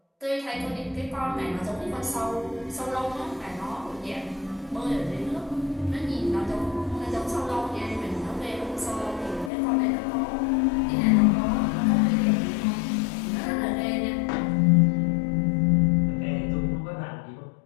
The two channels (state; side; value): drops out; right; at 9.5 s